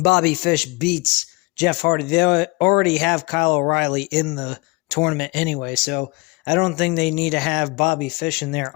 Fish beats Jeff Hardy. They already have Kyle O'Reilly in the tournament anyway, so I don't think they need to have Bobby Fish in there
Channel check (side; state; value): right; quieter; 26.3 dB